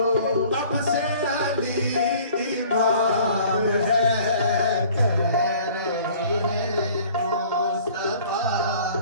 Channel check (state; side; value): inverted; both; correlation -0.51